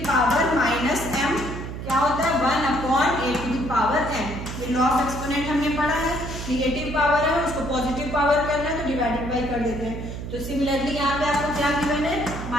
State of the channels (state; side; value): noise; right; hum, 8 dB below the sound